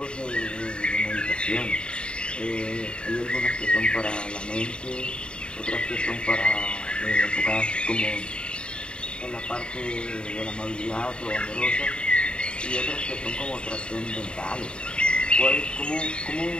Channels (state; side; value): late; right; 0.052 ms